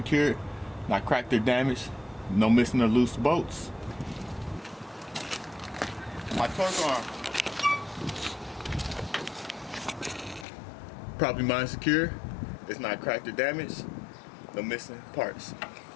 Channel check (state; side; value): drops out; right; at 10.5 s